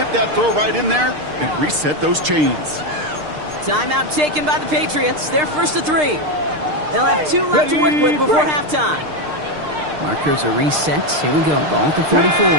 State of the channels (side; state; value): left; late; 6.6 ms